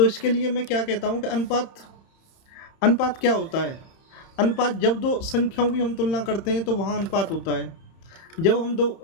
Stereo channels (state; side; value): late; right; 30 ms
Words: इसके लिए मैं क्या कहता हूँ कि अनुपात अनुपात क्या होता है? अनुपात, जब दो संख्याओं की हम तुलना करते हैं तो वहाँ अनुपात होता है। जब हम दो,